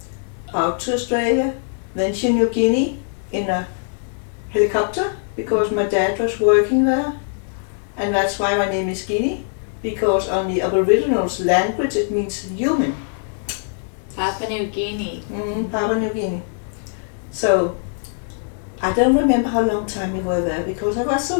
out to Australia, then to New Guinea in a helicopter because my dad was working there. And that's why my name is Guinea, because on the Aboriginals language it means human. Papua New Guinea. Papua New Guinea. So I don't remember how long time we were there because I was so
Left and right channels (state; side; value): silent; right; digital silence